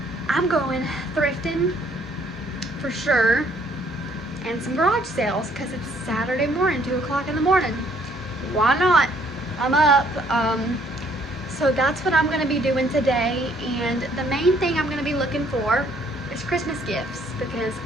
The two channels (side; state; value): both; normal; correlation 0.63